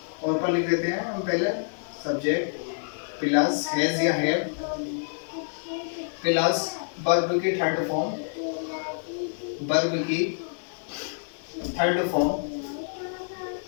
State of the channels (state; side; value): silent; right; 60 dB below the other